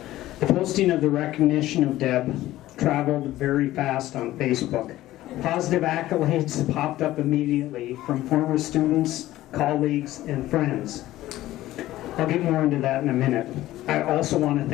The posting of the recognition of Deb traveled very fast on Facebook. Positive accolades popped up immediately from former students, colleagues, and friends. I'll get more into that in a minute. I also want to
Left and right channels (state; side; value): quieter; right; 15.4 dB